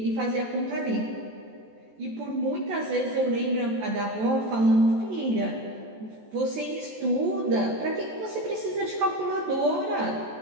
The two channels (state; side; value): late; left; 14 ms